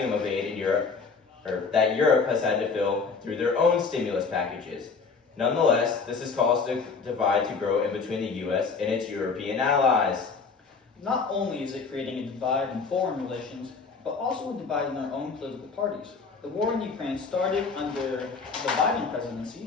of aid in Europe, that Europe has had to fill through their own stimulus packages. Nonetheless, this has caused a divide to grow in between the U.S. and its European allies. Not only is it creating a divide in foreign relations, but also a divide in their own political parties. The war in Ukraine started under the Biden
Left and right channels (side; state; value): right; quieter; 4.9 dB